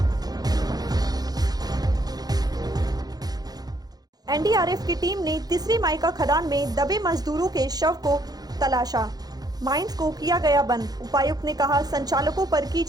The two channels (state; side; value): late; left; 0.19 ms